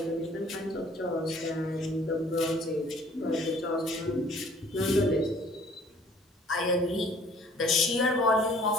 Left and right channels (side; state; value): both; normal; correlation 0.56